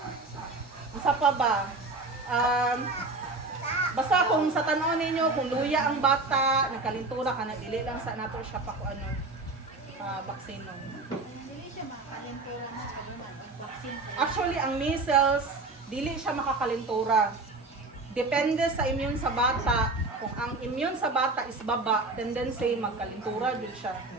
Isa pa ba? Basta kung sa tanon ninyo, kung luya ang bata, nagkalintura ka na, dili lang sa nato siya pa kung ano, vaccine. Dili siya makalentura na sa naman ang vaccine. Actually, ang measles, dili siya makakalintura. Depende sa immune sa bata. Kung ang immune sa bata is baba, tendency magkalintura jud siya.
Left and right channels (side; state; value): left; quieter; 3.4 dB